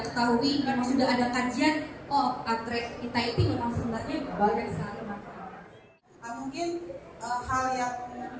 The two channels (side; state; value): both; identical; correlation 1.00